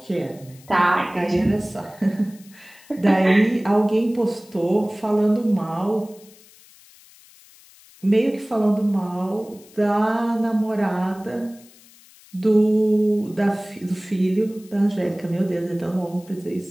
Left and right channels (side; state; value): left; noise; hiss, 25 dB below the sound